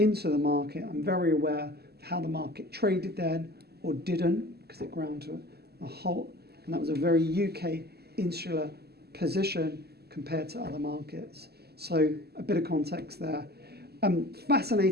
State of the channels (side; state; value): left; late; 0.46 ms